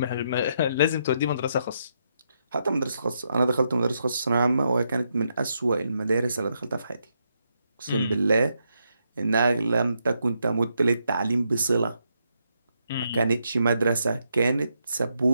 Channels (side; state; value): both; inverted; correlation -0.80